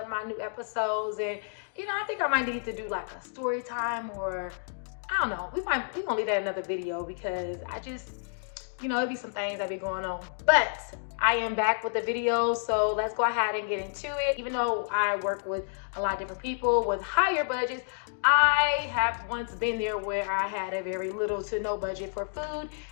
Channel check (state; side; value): silent; right; digital silence